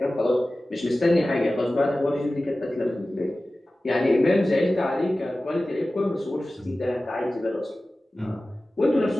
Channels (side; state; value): both; normal; correlation 0.96